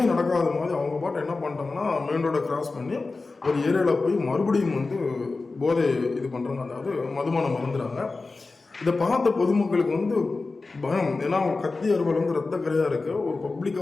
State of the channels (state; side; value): quieter; right; 3.7 dB